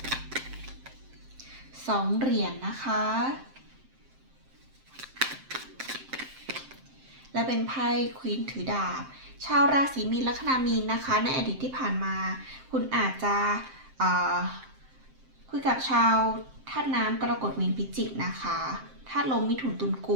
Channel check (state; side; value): late; left; 7.6 ms